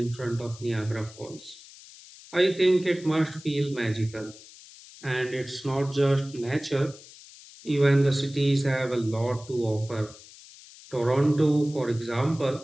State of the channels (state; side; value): noise; left; hiss, 20 dB below the sound